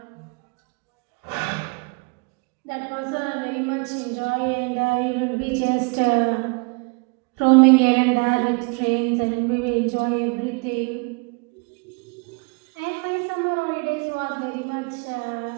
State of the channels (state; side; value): quieter; left; 31.3 dB